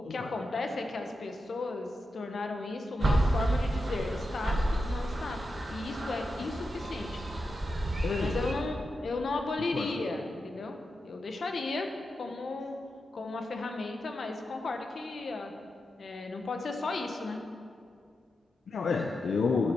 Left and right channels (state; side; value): normal; both; correlation 0.89